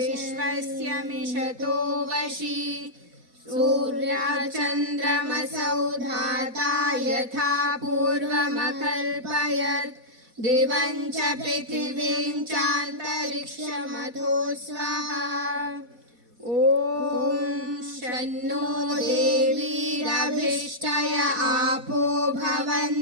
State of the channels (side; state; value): left; late; 4.1 ms